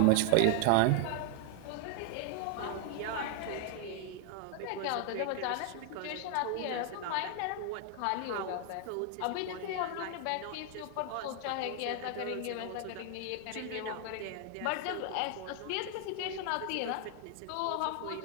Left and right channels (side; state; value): both; different; correlation 0.00